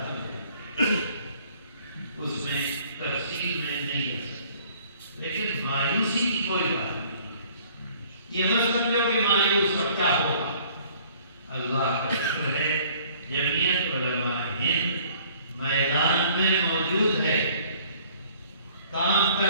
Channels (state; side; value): inverted; both; correlation -0.56